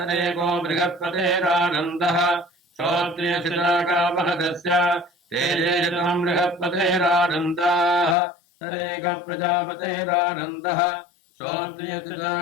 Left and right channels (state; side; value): drops out; right; at 8.2 s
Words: बृहस्पतेरानन्दः श्रोत्रियजनागावहतस्य तेजेशतम् बृहस्पतेरानन्दाः तदेक प्रजापतेरानन्दः